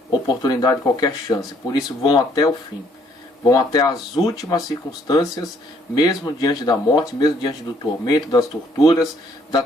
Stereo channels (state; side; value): normal; both; correlation 0.65